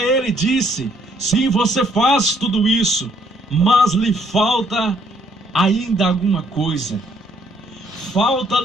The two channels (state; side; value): normal; both; correlation 0.67